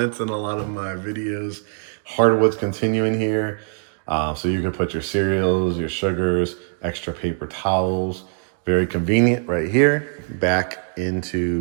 in a lot of my videos. Hardwood's continuing here. So you can put your cereals, your sugars, extra paper towels. Very convenient right here, back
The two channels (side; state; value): left; silent; digital silence